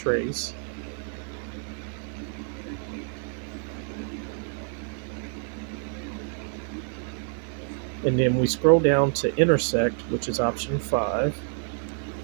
And then we scroll down to intersect, which is option 5.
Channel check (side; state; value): left; silent; 60 dB below the other